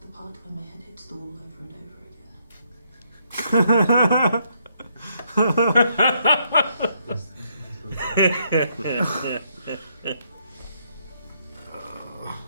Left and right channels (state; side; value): inverted; both; correlation -0.74